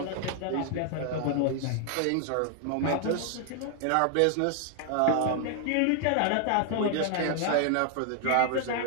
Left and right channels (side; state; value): both; different; correlation 0.00